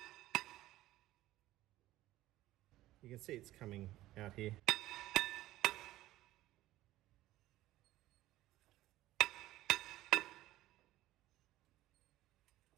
You can see it's coming out here.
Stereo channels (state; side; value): quieter; left; 15.7 dB